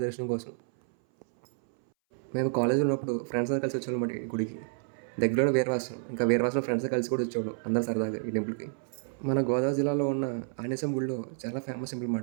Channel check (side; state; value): left; silent; 58 dB below the other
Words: దర్శనం కోసం. మేము కాలేజీలో ఉన్నప్పుడు ఫ్రెండ్స్ అందరూ కలిసి వచ్చేవాళ్ళమాట ఈ గుడికి. దగ్గరలోనే వీరవాసం. ఇంకా వీరవాసంలో ఫ్రెండ్స్‌తో కలిసి కూడా వచ్చేవాళ్ళం అందరూ సరదాగా ఈ టెంపుల్‌కి. మన గోదావరి జిల్లాలో ఉన్న ఆంజనేయస్వామి గుడిలో చాలా ఫేమస్ టెంపుల్